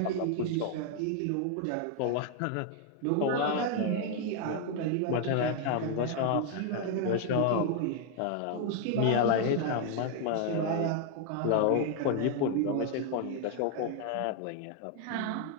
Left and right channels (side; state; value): both; different; correlation 0.00